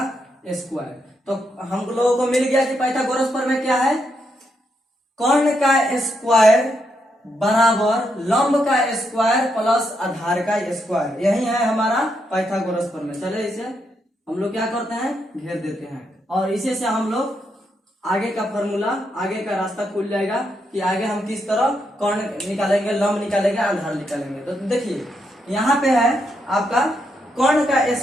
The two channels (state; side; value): normal; both; correlation 0.80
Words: स्क्वायर। तो हम लोगों को मिल गया कि पाइथागोरस प्रमेय क्या है, कर्ण का स्क्वायर बराबर लंब का स्क्वायर प्लस आधार का स्क्वायर, यही है हमारा पाइथागोरस प्रमेय। चले इसे हम लोग क्या करते हैं, घेर देते हैं, और इसे से हम लोग आगे का फॉर्मूला, आगे का रास्ता खुल जाएगा कि आगे हम किस तरह कर्ण निकालेंगे, लंब निकालेंगे, आधार निकालेंगे। तो देखिए यहाँ पे है आपका कर्ण का